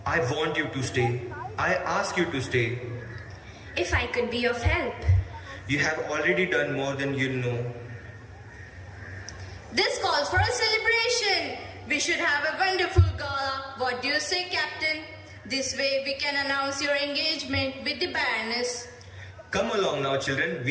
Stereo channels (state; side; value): identical; both; correlation 1.00